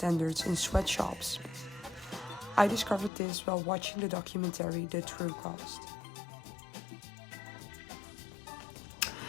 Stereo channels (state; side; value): drops out; right; at 3.1 s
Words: in sweatshops. I discovered this while watching the documentary The True Cost.